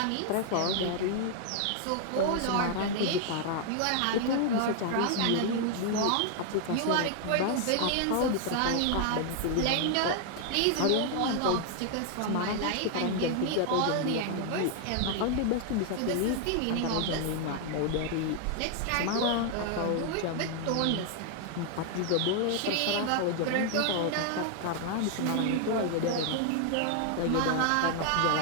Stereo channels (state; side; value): different; both; correlation 0.00